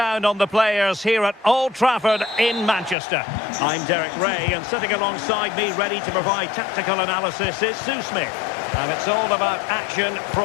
on the players here at Old Trafford in Manchester. I'm Derek Ray, and sitting alongside me ready to provide tactical analysis is Sue Smith. And it's all about action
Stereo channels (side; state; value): right; drops out; at 3.0 s